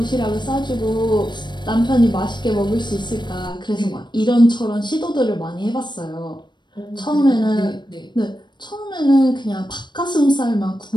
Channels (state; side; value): late; right; 0.22 ms